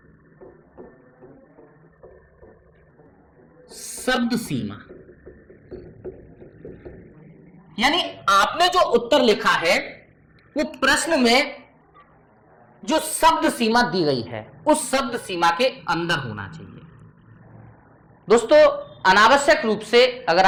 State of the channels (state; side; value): identical; both; correlation 1.00